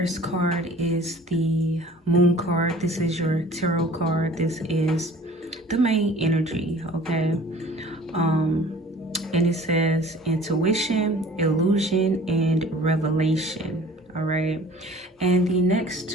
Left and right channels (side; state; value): both; normal; correlation 0.47